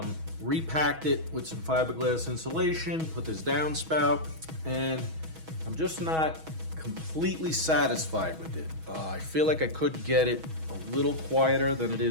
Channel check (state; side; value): late; left; 6.2 ms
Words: repacked it with some fiberglass insulation, put this downspout, and I'm just not completely satisfied with it. I feel like I could get it a little quieter than it